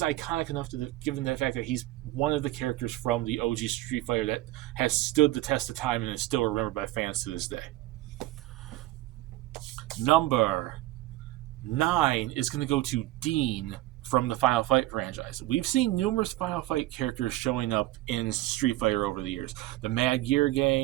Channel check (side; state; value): left; quieter; 17.0 dB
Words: iconic enough given the fact that he's one of the characters from the OG Street Fighter that has stood the test of time and is still remembered by fans to this day. Number 9 is going to go to Dean from the Final Fight franchise. We've seen numerous Final Fight characters showing up in Street Fighter over the years. The Mad Gear